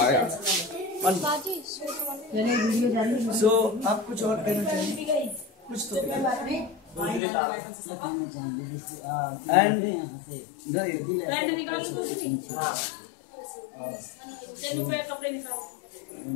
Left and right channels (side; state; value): right; drops out; at 7.2 s